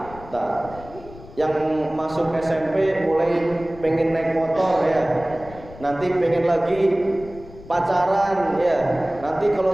Yang masuk SMP mulai pengen naik motor, ya, nanti pengen lagi pacaran, ya, nanti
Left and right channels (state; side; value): noise; left; rumble, 18 dB below the sound